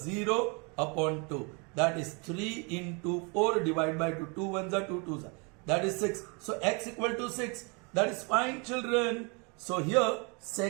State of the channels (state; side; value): quieter; left; 32.2 dB